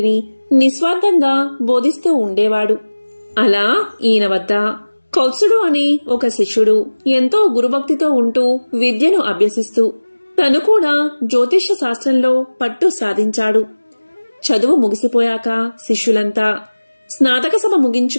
నిస్వార్థంగా బోధిస్తూ ఉండేవాడు. అలా ఈయన వద్ద కౌత్సుడు అనే ఒక శిష్యుడు ఎంతో గురుభక్తితో ఉంటూ విద్యను అభ్యసిస్తూ తను కూడా జ్యోతిష శాస్త్రంలో పట్టు సాధించాడు. చదువు ముగిసిపోయాక శిష్యులంతా స్నాతక సభ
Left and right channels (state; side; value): inverted; both; correlation -1.00